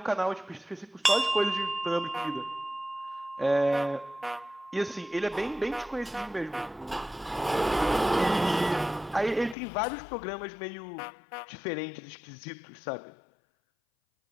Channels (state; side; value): drops out; right; at 9.6 s